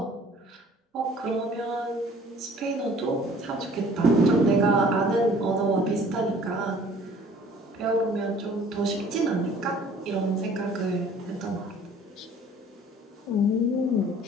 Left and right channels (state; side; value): normal; both; correlation 0.53